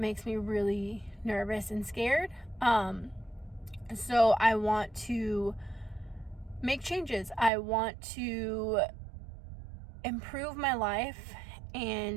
me really nervous and scared. So I want to make changes. I want to improve my life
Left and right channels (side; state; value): left; drops out; at 7.5 s